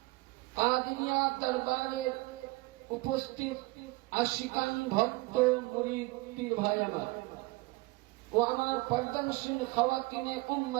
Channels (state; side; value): quieter; left; 23.0 dB